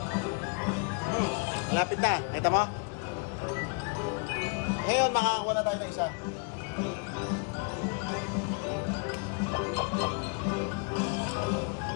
Lapit na. Kita mo? Ngayon, makakakuha na tayo ng isa.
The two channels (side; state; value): right; quieter; 36.3 dB